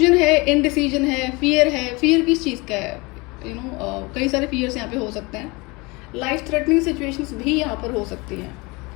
है, इनडिसीजन है, फियर है। फियर किस चीज़ का है? कई सारे फियर्स यहाँ पे हो सकते हैं। लाइफ थ्रेटनिंग सिचुएशंस भी यहाँ पर हो सकती हैं।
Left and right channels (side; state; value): right; quieter; 25.6 dB